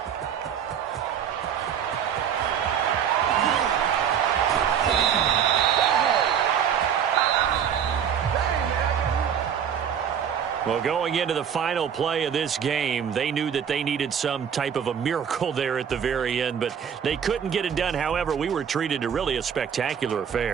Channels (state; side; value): quieter; left; 8.2 dB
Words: Well, going into the final play of this game, they knew that they needed some type of a miracle there at the very end, but they couldn't get it done. However, we were treated to really a spectacular